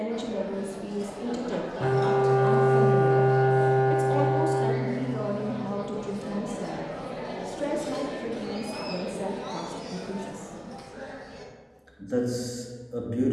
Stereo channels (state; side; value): identical; both; correlation 1.00